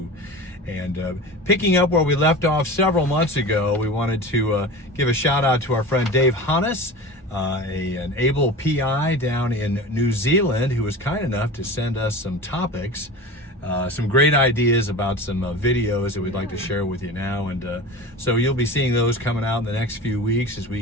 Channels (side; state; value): both; normal; correlation 0.32